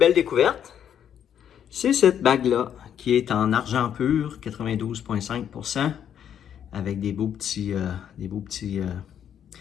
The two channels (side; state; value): right; quieter; 9.2 dB